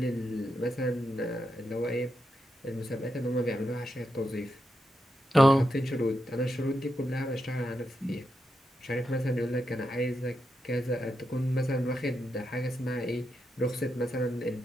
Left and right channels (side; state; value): both; normal; correlation 0.85